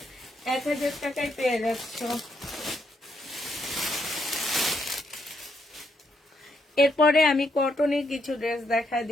1000 টাকায় পেয়ে যাচ্ছ। এরপরে আমি কটনের কিছু ড্রেস দেখা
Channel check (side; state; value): both; normal; correlation 0.76